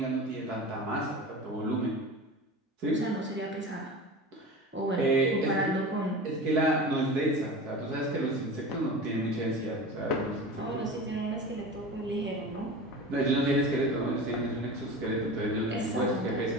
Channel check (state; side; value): normal; both; correlation 0.32